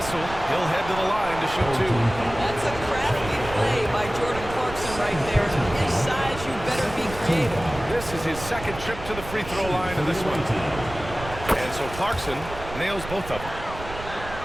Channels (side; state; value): right; noise; rumble, 12 dB below the sound